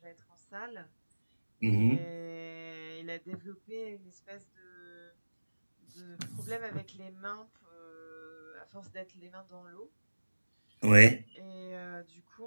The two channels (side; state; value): both; inverted; correlation -1.00